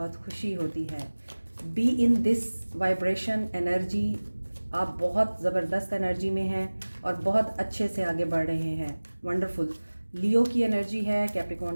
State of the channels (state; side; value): inverted; both; correlation -1.00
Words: खुशी होती है। Be in this vibration energy, आप बहुत ज़बरदस्त एनर्जी में हैं और बहुत अच्छे से आगे बढ़ रहे हैं। वंडरफुल। लियो की एनर्जी है,